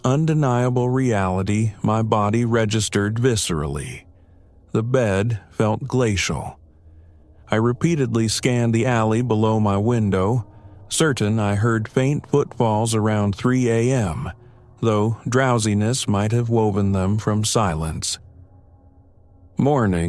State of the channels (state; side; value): identical; both; correlation 1.00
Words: undeniable reality my body registered viscerally. The bed felt glacial. I repeatedly scanned the alley below my window, certain I heard faint footfalls around 3 a.m., though drowsiness might have woven them from silence.